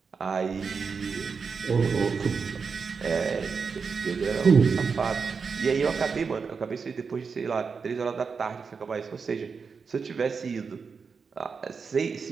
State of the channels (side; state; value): left; quieter; 5.4 dB